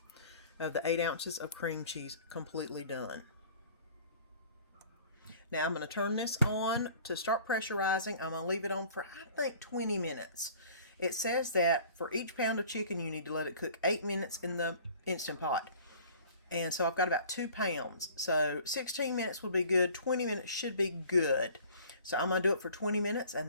of the 8 ounces of cream cheese completely done. Now I'm going to turn this on to start pressurizing. I'm going to leave it on for, I think, 20 minutes. It says that for each pound of chicken, you need to let it cook 8 minutes in the Instant Pot. And so I've got about 2 pounds. So 16 minutes would be good. 20 minutes should be good. So I'm going to do it for 20 minutes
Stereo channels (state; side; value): inverted; both; correlation -0.48